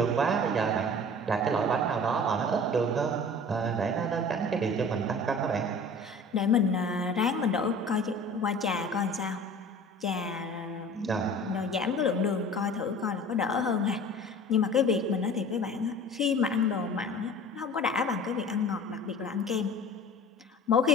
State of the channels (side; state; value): both; normal; correlation 0.43